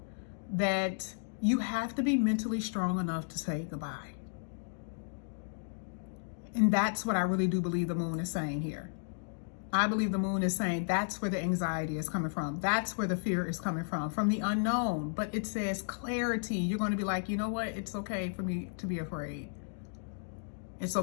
that you have to be mentally strong enough to say goodbye. And that's what I really do believe the moon is saying here. I believe the moon is saying that's where the anxiety is coming from. That's where the fear is coming from the unknown. But it says clarity. You're going to be like, you know what? It's okay for me to be afraid. It's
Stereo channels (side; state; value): right; silent; digital silence